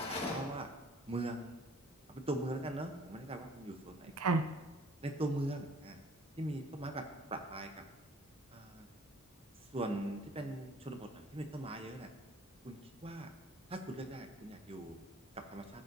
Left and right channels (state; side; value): normal; both; correlation 0.54